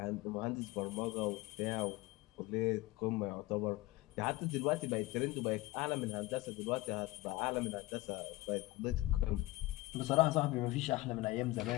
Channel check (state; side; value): quieter; right; 19.6 dB